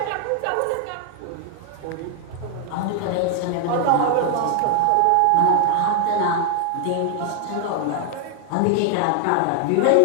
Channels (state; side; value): different; both; correlation 0.00